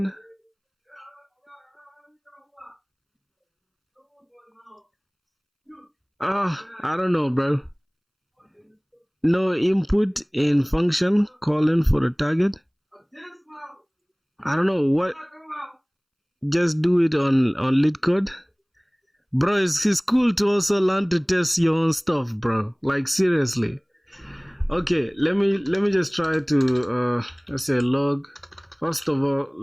I don't know, bro. No input in function calling for the target. I don't know what. Just do it on lead code, bro. It's cool to also learn to test your own stuff, bro. Like seriously. Okay, let me just try to let's say log. First of all,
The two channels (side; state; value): both; identical; correlation 1.00